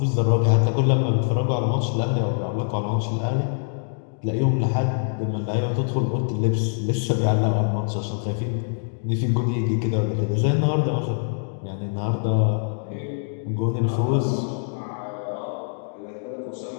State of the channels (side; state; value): right; silent; digital silence